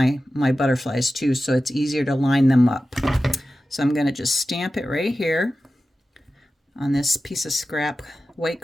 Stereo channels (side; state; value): both; normal; correlation 0.94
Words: butterflies too, so it's easier to line them up. So I'm going to just stamp it right here on this piece of scrap white